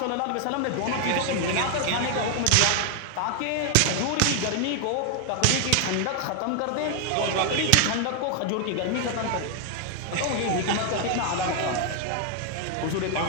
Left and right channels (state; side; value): different; both; correlation 0.00